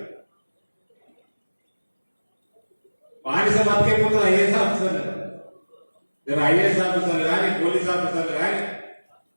బానిస బతికైపోతారు ఐఏఎస్ ఆఫీసర్లు. ఐఏఎస్ ఆఫీసర్లు కానీ, పోలీస్ ఆఫీసర్లు కానీ,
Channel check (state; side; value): inverted; both; correlation -1.00